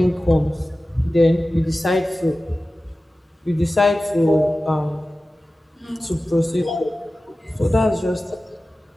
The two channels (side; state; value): both; normal; correlation 0.96